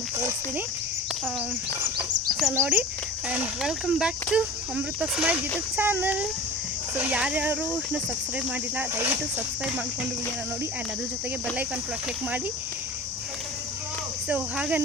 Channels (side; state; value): both; normal; correlation 0.36